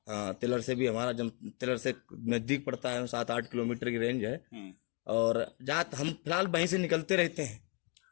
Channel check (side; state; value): right; quieter; 34.9 dB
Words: हाँ, तिलर से भी हमारा तिलर से नजदीक पड़ता है, 7-8 किलोमीटर की रेंज है। और हम फिलहाल वहीं से निकलते रहते हैं